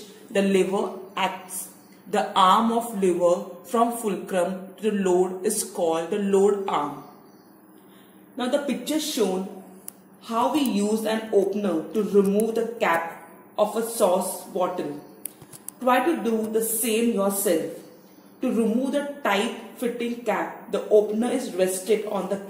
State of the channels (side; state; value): both; identical; correlation 1.00